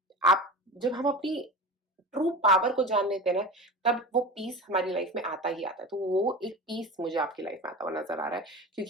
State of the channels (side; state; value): both; normal; correlation 0.30